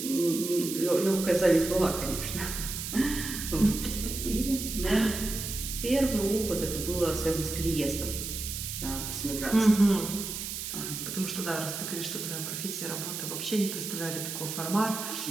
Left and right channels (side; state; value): right; noise; hiss, 5 dB below the sound